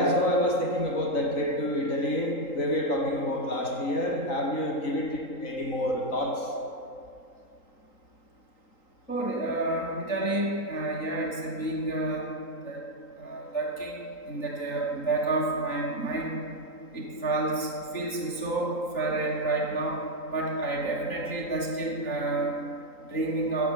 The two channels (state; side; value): late; right; 3.8 ms